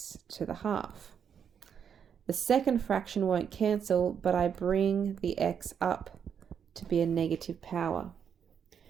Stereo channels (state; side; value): quieter; left; 7.7 dB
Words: to the half. The second fraction won't cancel, but I bring the x up to be a negative power.